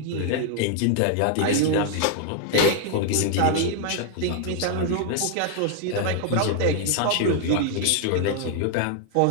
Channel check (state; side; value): different; both; correlation 0.00